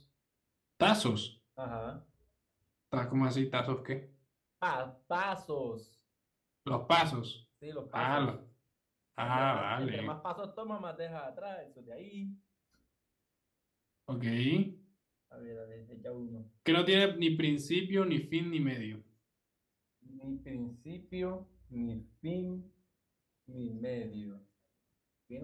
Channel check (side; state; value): both; identical; correlation 1.00